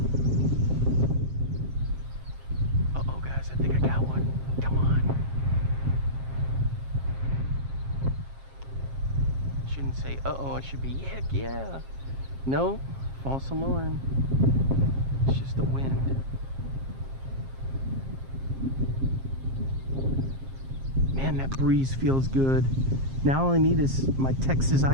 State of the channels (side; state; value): left; late; 7.5 ms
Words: Uh-oh, guys, I think I got one. Come on. Shouldn't say uh-oh, I should be heck yeah. No, false alarm. It's just the wind. Man, that breeze feels good. Now all I need is my Texas